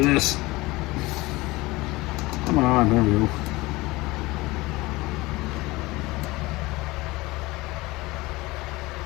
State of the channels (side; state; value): right; quieter; 21.1 dB